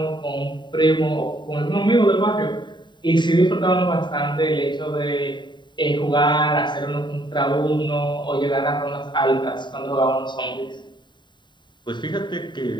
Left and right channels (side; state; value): right; late; 0.22 ms